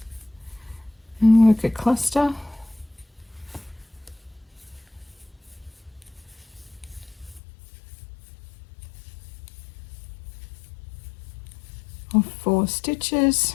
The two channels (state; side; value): drops out; right; at 7.4 s